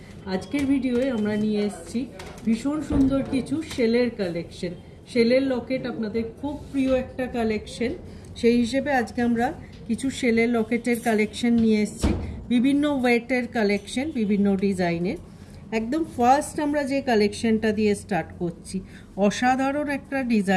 आजकेर भिडियोए आमरा निये एसेछि भीषण सुंदर किछु शेलेर कालेक्शन। शेलेर लकेट आपनादेर खूब प्रिय एकटा कालेक्शन, सेई हिसेबे आजके आमरा किछु शेलेर लकेटेर कालेक्शन निये एसेछि। विभिन्न वेटेर कालेक्शन, विभिन्न डिजाइनेर। एकदम फार्स्ट आमरा जे कालेक्शनटा दिये स्टार्ट करछि, असाधारण एकटा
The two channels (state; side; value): identical; both; correlation 1.00